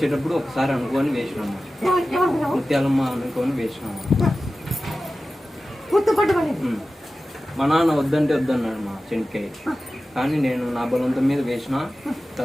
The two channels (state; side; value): normal; both; correlation 0.95